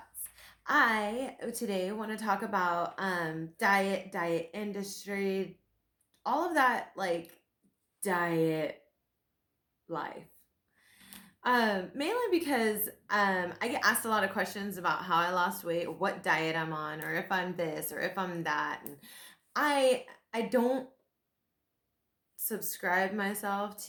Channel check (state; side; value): identical; both; correlation 1.00